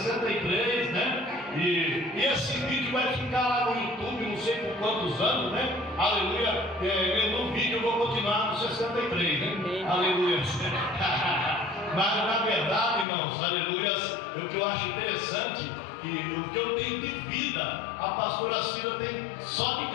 né? E esse vídeo vai ficar lá no YouTube, não sei por quantos anos, né? Aleluia. No vídeo eu vou continuar no 63, né? Aleluia. Mas na verdade, irmãos, aleluias, o que eu acho interessante, que o que eu tenho de vida, a pastora Cida tem só de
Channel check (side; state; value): right; drops out; at 13.1 s